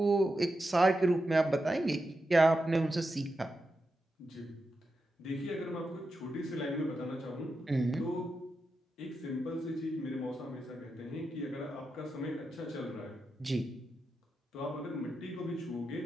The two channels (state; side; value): normal; both; correlation 0.88